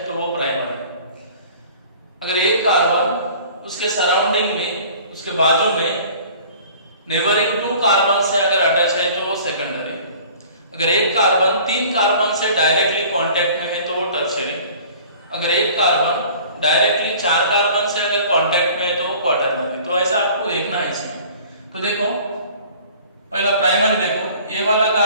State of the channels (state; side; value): inverted; both; correlation -0.48